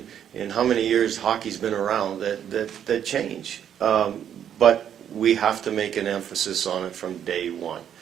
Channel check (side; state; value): left; quieter; 9.4 dB